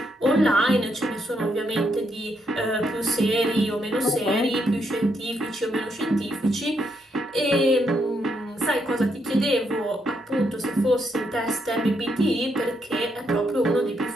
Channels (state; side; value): normal; both; correlation 0.78